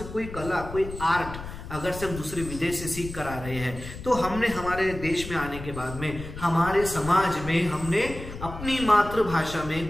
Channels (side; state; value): left; noise; rumble, 11 dB below the sound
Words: कोई कला, कोई आर्ट अगर से हम दूसरे विदेश से सीख कर आ रहे हैं, तो हमने हमारे देश में आने के बाद में हमारे समाज में हमने अपनी मातृभाषा